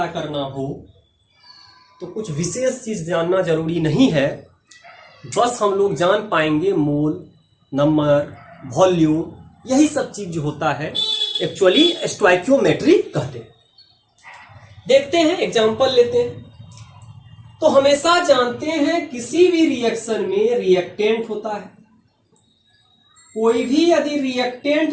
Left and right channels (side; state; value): both; identical; correlation 1.00